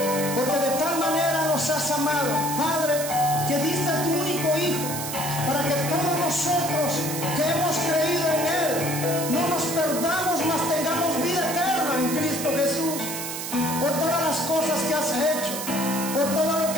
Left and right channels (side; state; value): right; noise; hiss, 6 dB below the sound